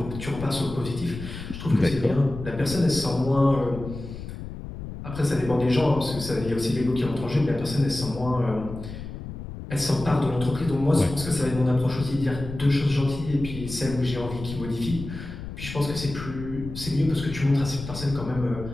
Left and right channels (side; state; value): left; noise; rumble, 10 dB below the sound